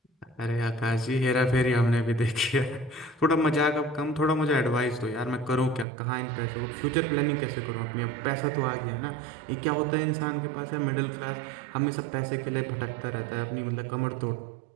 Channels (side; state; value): left; drops out; at 5.9 s